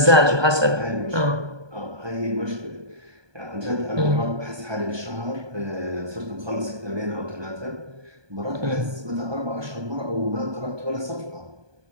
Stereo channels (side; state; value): left; late; 1.2 ms